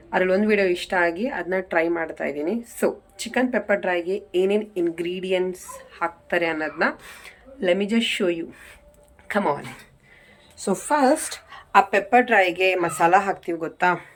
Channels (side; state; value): both; identical; correlation 1.00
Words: ಅದರಲ್ಲಿ ಒಂದು ವೀಡಿಯೋ ಇಷ್ಟ ಆಗಿ ಅದನ್ನ ಟ್ರೈ ಮಾಡ್ತಾ ಇದ್ದೀನಿ. ಸೊ ಚಿಕನ್ ಪೆಪ್ಪರ್ ಡ್ರೈಗೆ ಏನೇನು ಇಂಗ್ರೀಡಿಯೆಂಟ್ಸ್ ಹಾಕ್ತಾರೆ ಅನ್ನೋದನ್ನ let me just show you. Come on. So first ಆ ಪೆಪ್ಪರ್ ಡ್ರೈಗೆ ಮಸಾಲ ಹಾಕ್ತೀವಿ, ಗೊತ್ತಾ?